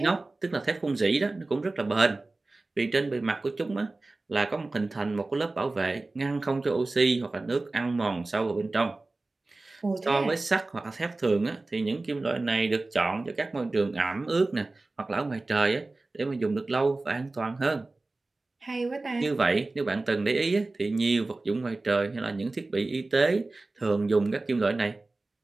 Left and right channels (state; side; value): quieter; left; 3.2 dB